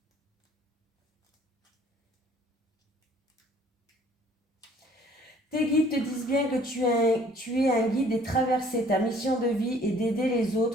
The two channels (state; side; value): normal; both; correlation 0.57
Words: Tes guides te disent bien que tu es un guide des traversées. Ta mission de vie est d'aider les